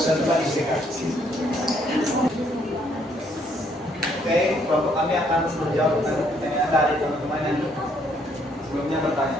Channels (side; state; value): both; normal; correlation 0.68